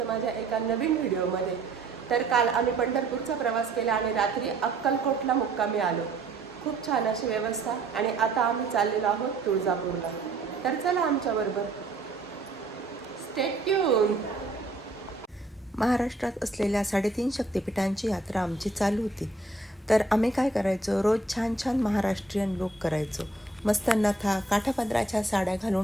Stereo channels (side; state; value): left; quieter; 3.0 dB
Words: माझ्या एका नवीन व्हिडिओमध्ये। तर काल आम्ही पंढरपूरचा प्रवास केला आणि रात्री अक्कलकोटला मुक्कामी आलो। खूप छान अशी व्यवस्था आणि आता आम्ही चाललेलो आहोत तुळजापूरला। तर चला आमच्याबरोबर, स्टे ट्यून। महाराष्ट्रात असलेल्या 3.5 शक्तिपीठांची यात्रा आमची चालू होती। तर आम्ही काय करायचो, रोज छान छान महाराष्ट्रीयन लुक करायचो। मस्त नथा काठापदराच्या साड्या